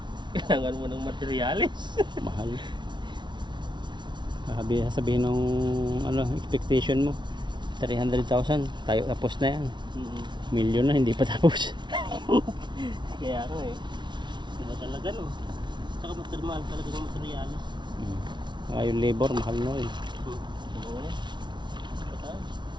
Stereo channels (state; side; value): late; left; 0.22 ms